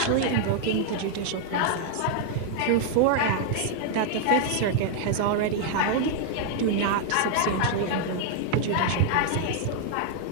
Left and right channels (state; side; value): different; both; correlation 0.00